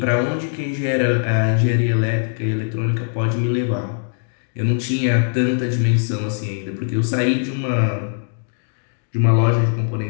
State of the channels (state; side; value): silent; right; 65 dB below the other